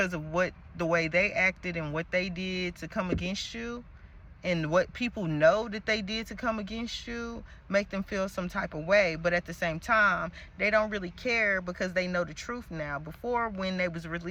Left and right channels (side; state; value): both; identical; correlation 1.00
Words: of what the way they acted and what they did to come against you, and what people know that they did to come against you, make them feel some type of way. But at the same time, they don't really care because they know the truth now. Before, when they was